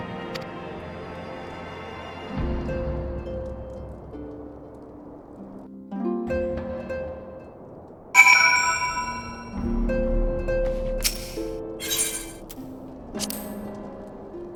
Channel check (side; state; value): both; identical; correlation 1.00